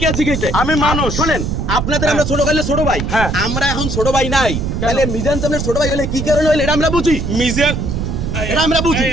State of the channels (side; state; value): right; noise; rumble, 2 dB below the sound